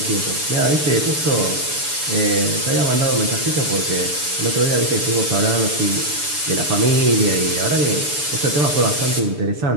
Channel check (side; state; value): left; late; 6.9 ms